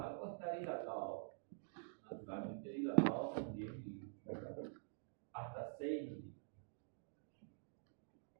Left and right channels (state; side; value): silent; left; digital silence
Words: o está dilatado. Naturalmente dilatado con 10 milímetros, hasta 6 milímetros.